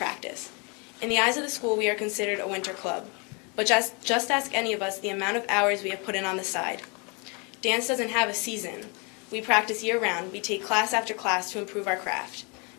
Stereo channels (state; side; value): quieter; right; 32.2 dB